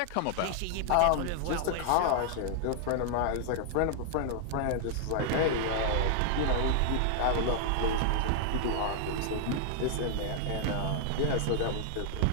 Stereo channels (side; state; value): both; different; correlation 0.00